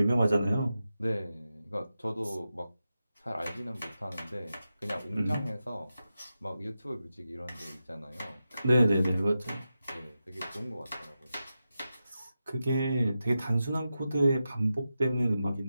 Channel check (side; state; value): both; inverted; correlation -0.90